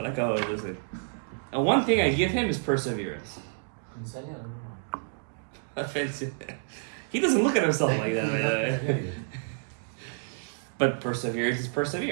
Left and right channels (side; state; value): left; silent; digital silence